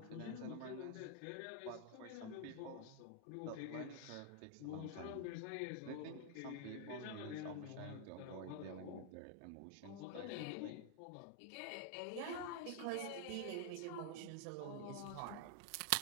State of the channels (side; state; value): both; different; correlation 0.00